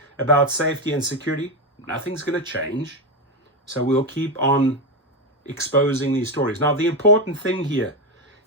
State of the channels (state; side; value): normal; both; correlation 0.10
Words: about safety and security, nothing's going to change. So we'll keep on exposing these stories. Now, the important thing here